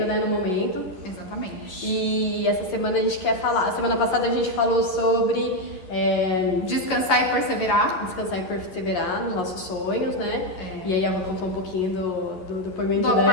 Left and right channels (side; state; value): right; late; 11 ms